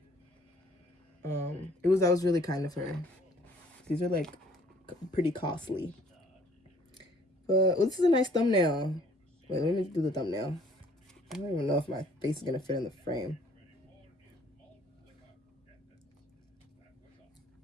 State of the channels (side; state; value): both; normal; correlation 0.58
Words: That was really kind of her. These are like pretty costly. But this is a nice thumbnail. Wait, let me do the thumbnail. I don't even know if my face is gonna fit in the frame.